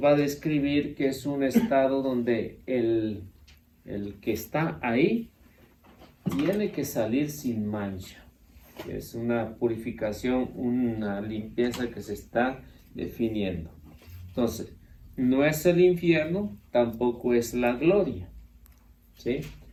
va a describir que es un estado donde el que está ahí tiene que salir sin mancha. Es una purificación, una limpieza que se está definiendo. Entonces, no es el infierno, tampoco es la gloria, ¿sí?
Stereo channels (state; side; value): identical; both; correlation 1.00